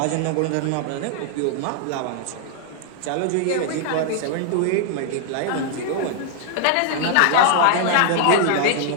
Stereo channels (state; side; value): different; both; correlation 0.00